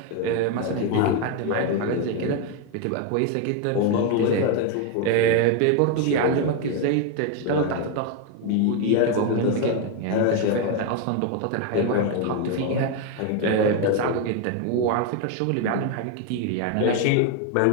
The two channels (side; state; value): both; different; correlation 0.01